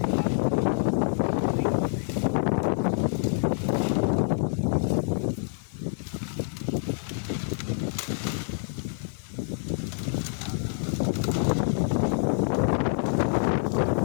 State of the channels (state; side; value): silent; right; 55 dB below the other